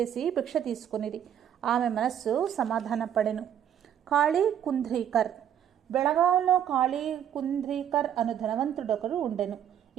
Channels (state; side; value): quieter; left; 9.7 dB